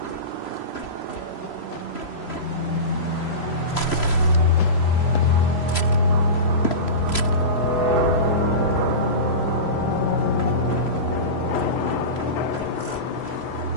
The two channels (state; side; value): late; right; 3.0 ms